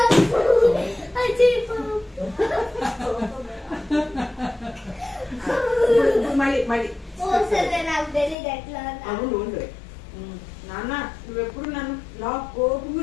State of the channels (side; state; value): right; drops out; at 8.3 s